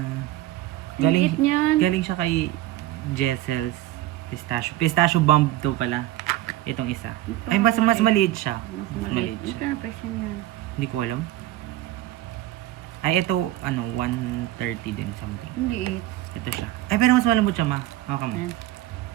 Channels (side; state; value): left; quieter; 14.9 dB